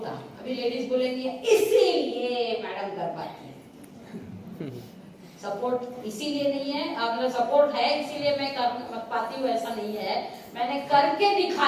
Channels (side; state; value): both; identical; correlation 1.00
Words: था। अभी लेडीज बोलेंगी इसीलिए मैडम कर पाती है। सपोर्ट इसीलिए नहीं है, मतलब सपोर्ट है इसीलिए मैं कर पाती हूँ ऐसा नहीं है, मैंने करके